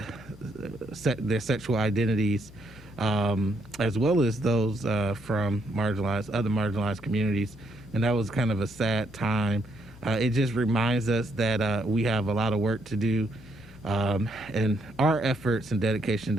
sexual identities, as well as those from other marginalized communities. And that was kind of a sad time. It just reminds us that we have a lot of work to do, and our efforts and dedication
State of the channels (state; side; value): normal; both; correlation 0.73